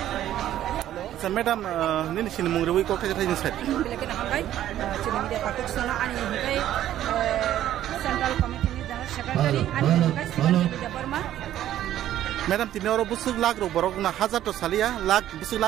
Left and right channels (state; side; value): quieter; left; 12.3 dB